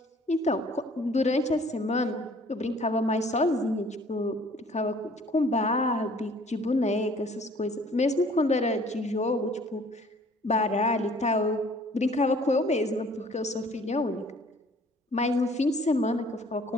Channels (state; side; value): normal; both; correlation 0.55